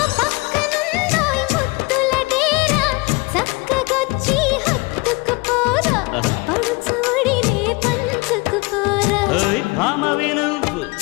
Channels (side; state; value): right; quieter; 26.5 dB